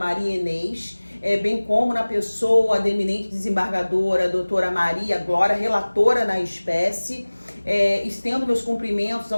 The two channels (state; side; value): inverted; both; correlation -1.00